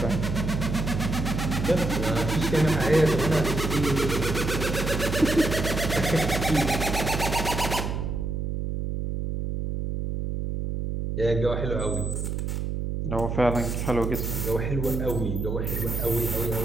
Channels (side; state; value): right; noise; hum, 2 dB below the sound